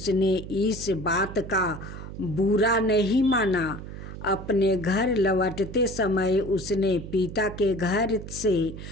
इस बात का बुरा नहीं माना। अपने घर लौटते समय उसने पिता के घर से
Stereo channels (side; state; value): right; noise; hum, 11 dB below the sound